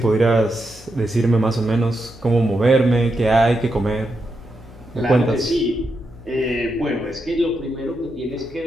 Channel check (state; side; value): noise; left; hum, 22 dB below the sound